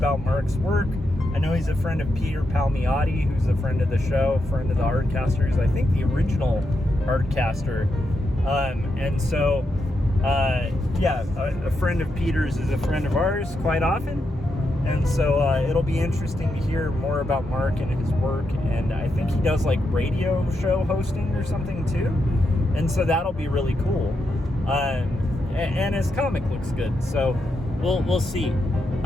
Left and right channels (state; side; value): normal; both; correlation 0.84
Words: Mark's work. I know he's a friend of Peter Palmiotti, who's a friend of the show, friend of the Artcasters, I think the original Artcaster. And so, a friend of Peter's is a friend of ours quite often. And so it'll be interesting to hear more about Mark and his work, and I think he does like radio show hosting or something too, and so that'll be really cool. And his comic looks good, so we'll see.